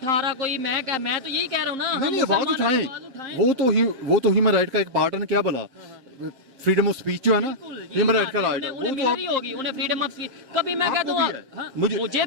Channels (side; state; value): left; late; 7.6 ms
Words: रहा कोई। मैं तो यही कह रहा हूँ ना, नहीं आवाज उठाएं, वो तो ह्यूमन राइट का एक पार्ट है ना, क्या बोला फ्रीडम ऑफ स्पीच जो है ना, ह्यूमन राइट का राइट है, उन्हें मिल रही होगी, उन्हें फ्रीडम ऑफ स्पीच। कभी मैं कहता हूँ मुझे